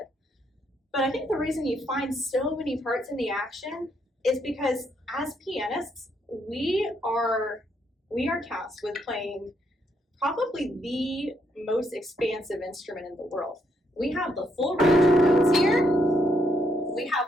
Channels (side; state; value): both; normal; correlation 0.75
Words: But I think the reason you find so many parts in the action is because as pianists, we are tasked with playing probably the most expansive instrument in the world. We have the full range of notes here. We have